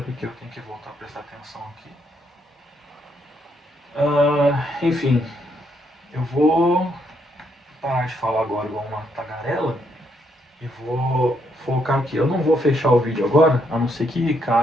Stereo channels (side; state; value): both; normal; correlation 0.75